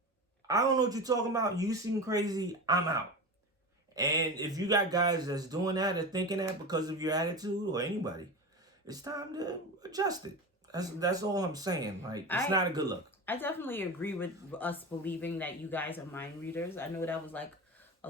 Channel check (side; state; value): both; normal; correlation 0.26